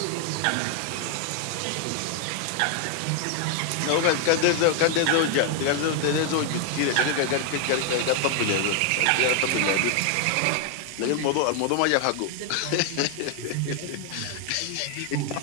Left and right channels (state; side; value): different; both; correlation 0.00